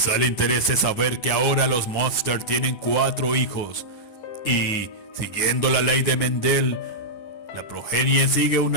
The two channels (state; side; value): late; right; 9.5 ms